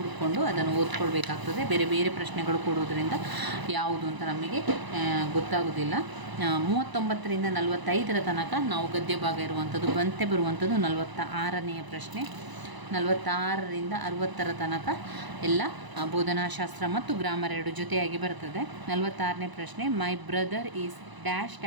ಅದನ್ನು ಓದ್ಕೊಳ್ಬೇಕಾಗ್ತದೆ. ಬೇರೆ ಬೇರೆ ಪ್ರಶ್ನೆಗಳು ಕೊಡೋದ್ರಿಂದ ಯಾವುದು ಅಂತ ನಮಗೆ ಗೊತ್ತಾಗೋದಿಲ್ಲ. 39ರಿಂದ 45ರ ತನಕ ನಾವು ಗದ್ಯ ಭಾಗ ಇರುವಂಥದ್ದು. ಬಂತೆ ಬರುವಂಥದ್ದು 46ನೇ ಪ್ರಶ್ನೆ. 46ರಿಂದ 60ರ ತನಕ ಎಲ್ಲ ಬೋಧನಾಶಾಸ್ತ್ರ ಮತ್ತು ಗ್ರಾಮರ್ ಎರಡು ಜೊತೆಯಾಗಿ ಬರ್ತದೆ. 46ನೇ ಪ್ರಶ್ನೆ, my brother is dash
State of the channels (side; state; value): left; late; 1.0 ms